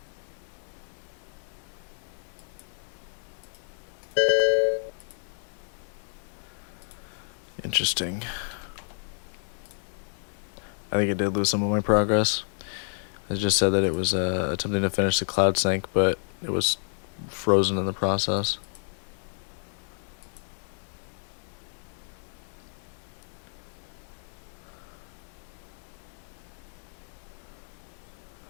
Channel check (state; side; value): silent; right; 58 dB below the other